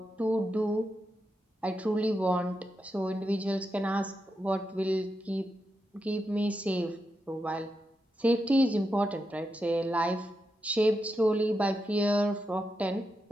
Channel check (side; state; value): both; normal; correlation 0.86